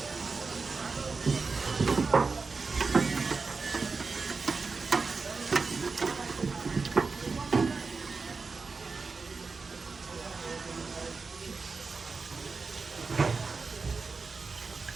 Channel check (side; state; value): left; quieter; 4.4 dB